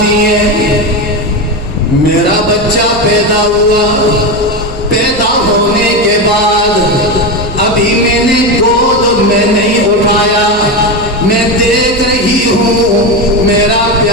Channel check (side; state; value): right; noise; hum, 16 dB below the sound